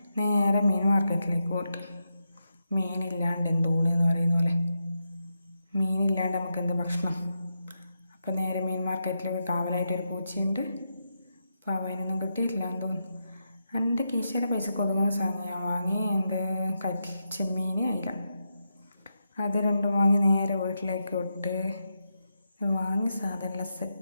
നേരെ മീൻ മാർക്കറ്റിലേക്ക് പോയിട്ട്. മീനില്ലാണ്ട് എന്തോണി എന്ന് പറയുന്ന പോലെ, മീനില്ലാണ്ട് നമുക്ക് എന്ത് ഭക്ഷണം. അപ്പം നേരെ മീൻ മാർക്കറ്റിൽ കാവലായിട്ടൊരു പൂച്ചയുണ്ട്. അപ്പോൾ അവനൊന്നും കിട്ടിയിട്ടില്ല എന്ന് തോന്നുന്നു. എൻ്റെ കീശയുടെ പൈസക്ക് ഒതുങ്ങുന്ന സാധനം ഞാൻ വാങ്ങി. ചെമ്മീൻ, അയില, അത് രണ്ടും വാങ്ങി നേരെ വീട്ടിലേക്ക് വിട്ട് വാങ്ങി സാധനമെല്ലാം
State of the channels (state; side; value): inverted; both; correlation -0.85